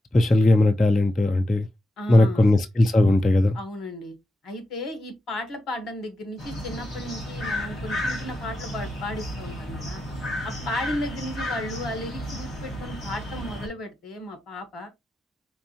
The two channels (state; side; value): normal; both; correlation 0.89